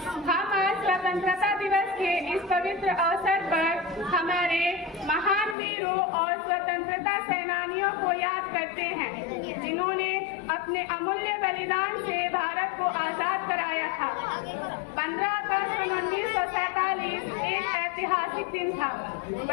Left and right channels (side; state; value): right; drops out; at 5.6 s